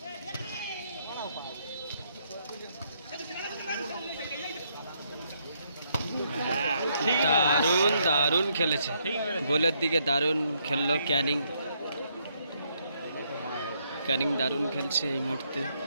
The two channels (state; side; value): inverted; both; correlation -0.74